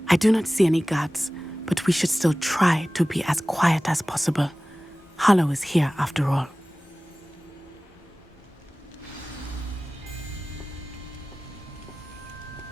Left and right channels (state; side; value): normal; both; correlation 0.98